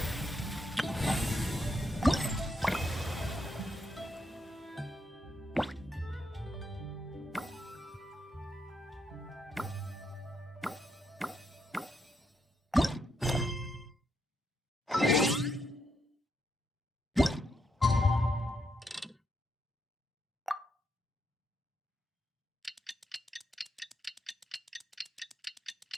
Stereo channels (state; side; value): normal; both; correlation 0.79